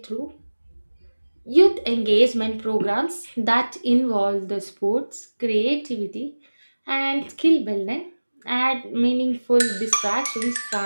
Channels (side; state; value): both; inverted; correlation -1.00